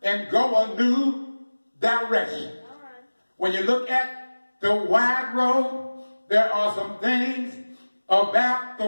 and go a new direction. When you look at the wide road, there are some things about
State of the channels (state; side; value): inverted; both; correlation -1.00